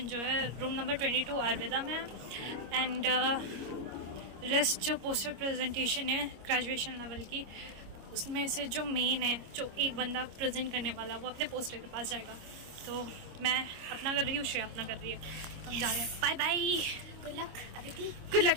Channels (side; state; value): left; late; 25 ms